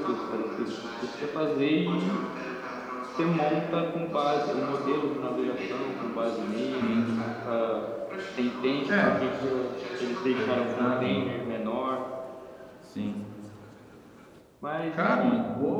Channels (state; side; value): identical; both; correlation 1.00